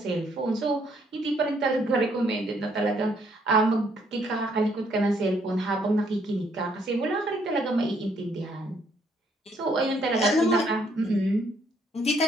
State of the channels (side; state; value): both; normal; correlation 0.68